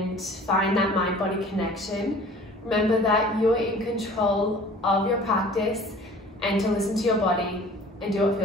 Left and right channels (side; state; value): both; normal; correlation 0.47